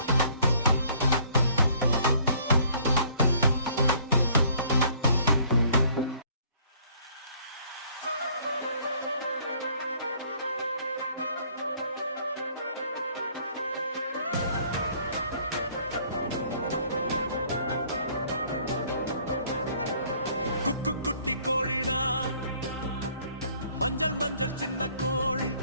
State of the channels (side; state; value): both; inverted; correlation -0.60